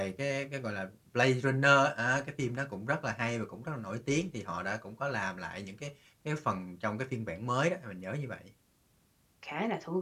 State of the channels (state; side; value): identical; both; correlation 1.00